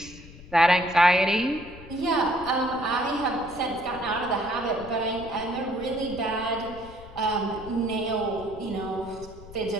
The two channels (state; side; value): noise; left; rumble, 17 dB below the sound